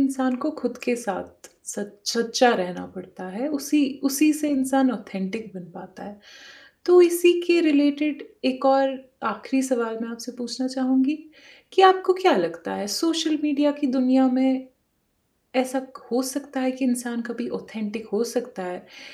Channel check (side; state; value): both; identical; correlation 1.00